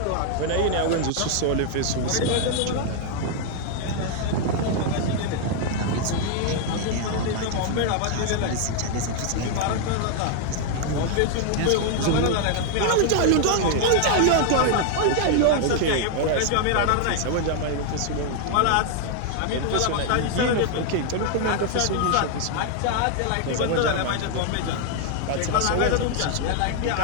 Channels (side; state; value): both; different; correlation 0.00